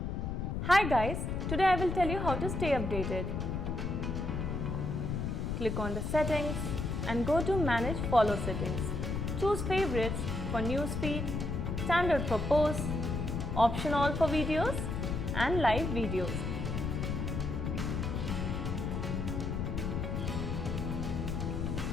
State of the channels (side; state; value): left; noise; rumble, 2 dB below the sound